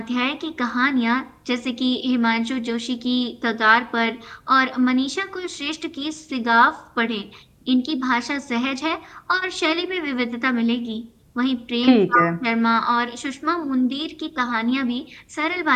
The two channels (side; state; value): both; identical; correlation 1.00